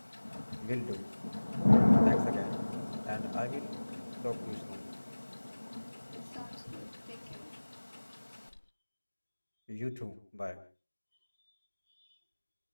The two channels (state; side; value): inverted; both; correlation -1.00